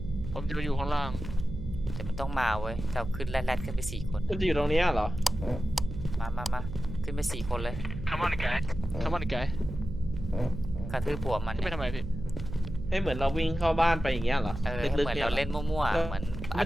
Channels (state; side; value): noise; right; hum, 8 dB below the sound